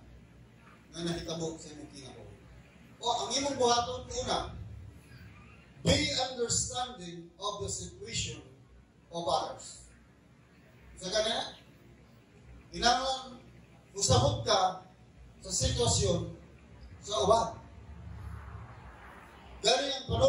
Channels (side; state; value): both; identical; correlation 1.00